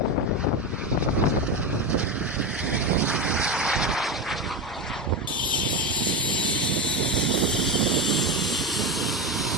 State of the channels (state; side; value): normal; both; correlation 0.14